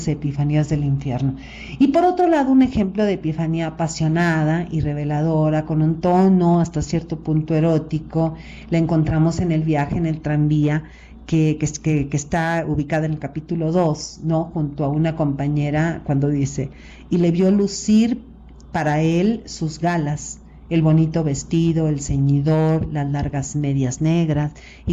epifanías del infierno. Y por otro lado, un ejemplo de epifanía apasionada y reveladora, con un tono hasta cierto punto erótico, la encontramos en el viaje en el tranvía, que está ubicada en el capítulo 2, ¿no?, junto a una compañera, cuando dice, y le vio lucir para él sus galas, el bonito vestido, el ceñidor, las largas medias negras,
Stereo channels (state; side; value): identical; both; correlation 1.00